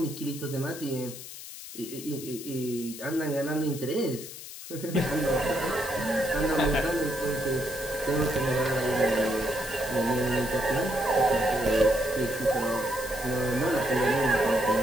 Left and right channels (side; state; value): left; noise; hiss, 12 dB below the sound